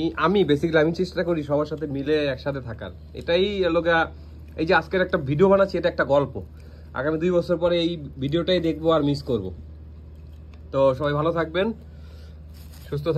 আমি বেসিক্যালি আমি চেষ্টা করি সবার সাথে মিলে একসাথে থাকার। এটাই লোকা, এই যে আজকের একটা ভিডিও বানাচ্ছি, এটা একটা গল্প। আগামী 2 বছর পরে এই ভিডিওটাই দেখবো আর মিস করব। তো সবাই ভালো থাকবেন, সুস্থ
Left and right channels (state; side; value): identical; both; correlation 1.00